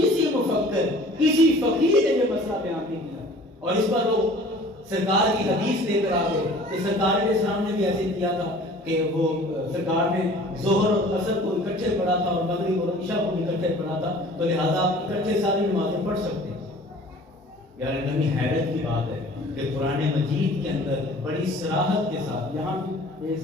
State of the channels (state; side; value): normal; both; correlation 0.48